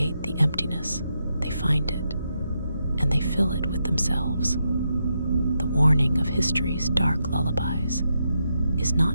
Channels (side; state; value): both; inverted; correlation -0.83